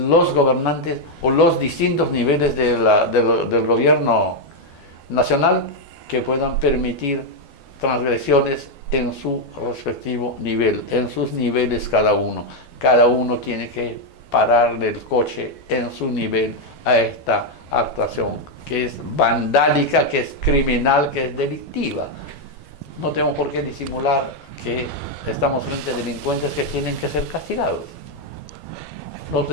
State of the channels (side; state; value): right; late; 12 ms